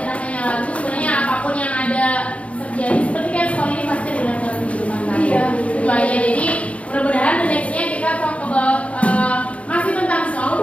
hanya lagu, sebenarnya apapun yang ada terjadi seperti kan sekolah ini pasti relate dengan kehidupan kita. Iya. Itu aja. Jadi mudah-mudahan the nextnya kita talk about masih tentang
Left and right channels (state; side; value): late; right; 0.063 ms